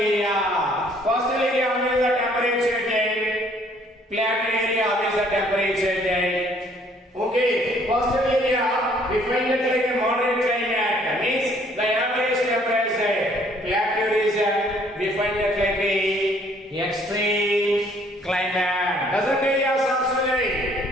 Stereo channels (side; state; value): both; normal; correlation 0.61